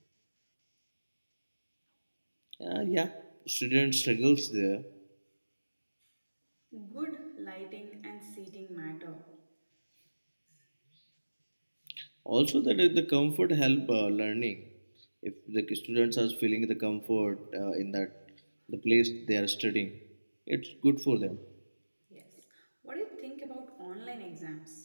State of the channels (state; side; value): inverted; both; correlation -1.00